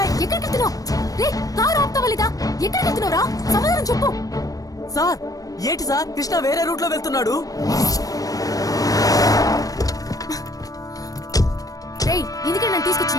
ఎక్కడికి వెళ్తున్నావు? రే కారు ఆపుతావా లేదా? ఎక్కడికి వెళ్తున్నావురా? సమాధానం చెప్పు. సార్ ఏంటి సార్, కృష్ణ వేరే రూట్ లో వెళ్తున్నాడు. రే ఎందుకే నన్ను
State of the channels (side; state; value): right; late; 0.18 ms